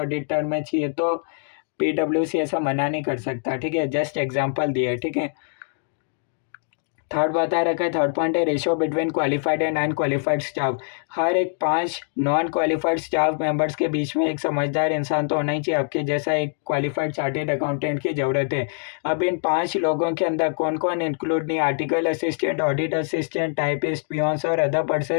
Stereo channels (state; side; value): silent; right; digital silence